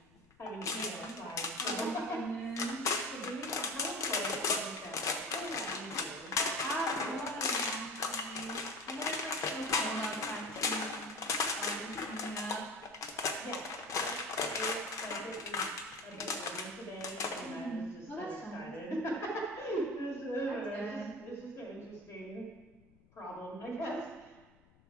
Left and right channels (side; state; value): left; noise; rumble, 29 dB below the sound